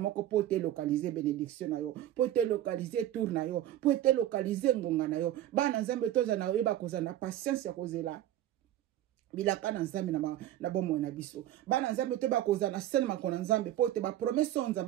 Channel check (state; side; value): quieter; left; 12.6 dB